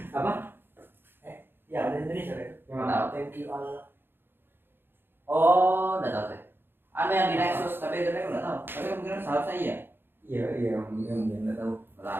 Apa? Ya ada Indonesia ya. Yang tahu? Thank you Allah. Oh, udah tahu sih. Ada yang di Nexus, tapi itu aku nggak tahu. Tapi kemungkinan seharusnya iya. Iya, nggak tahu.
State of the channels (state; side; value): late; left; 0.10 ms